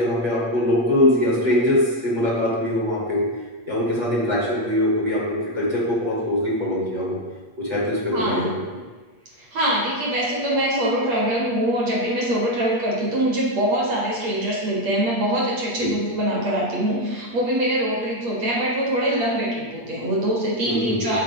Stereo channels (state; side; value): late; left; 8.4 ms